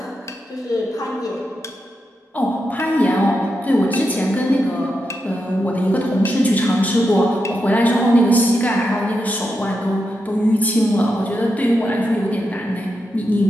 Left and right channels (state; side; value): normal; both; correlation 0.86